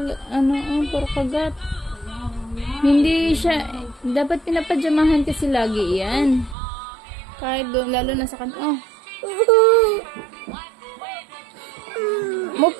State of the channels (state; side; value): drops out; left; at 6.6 s